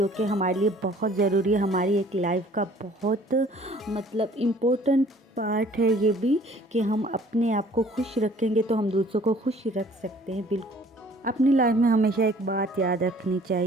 कि हमारे लिए बहुत ज़रूरी है, हमारी एक लाइफ का बहुत इम्पोर्टेंट पार्ट है ये भी, कि हम अपने आप को खुश रखेंगे तो हम दूसरों को खुश रख सकते हैं। बिल्कुल अपनी लाइफ में हमेशा एक बात याद रखनी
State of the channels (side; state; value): both; normal; correlation 0.55